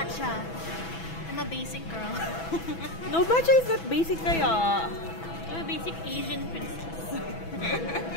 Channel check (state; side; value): late; right; 6.1 ms